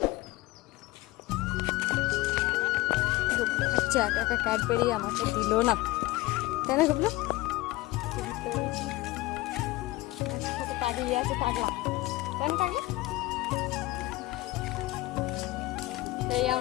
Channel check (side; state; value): right; quieter; 19.4 dB